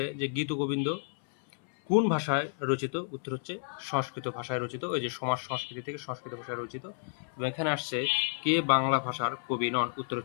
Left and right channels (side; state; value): right; silent; 57 dB below the other